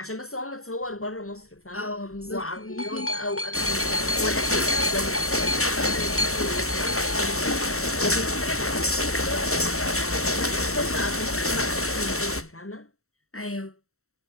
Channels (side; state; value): right; late; 0.63 ms